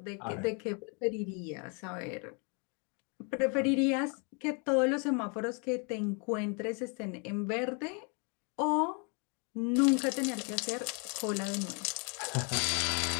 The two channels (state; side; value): quieter; right; 36.0 dB